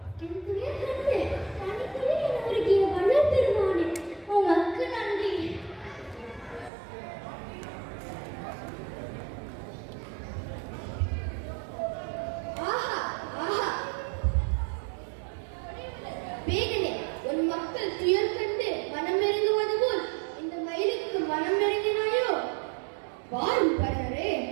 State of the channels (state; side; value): drops out; left; at 6.7 s